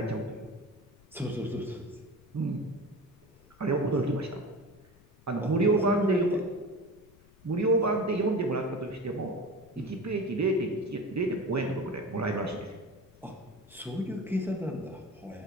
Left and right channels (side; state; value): left; noise; rumble, 27 dB below the sound